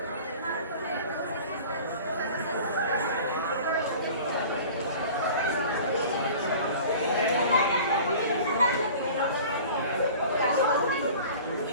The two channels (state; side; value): inverted; both; correlation -0.42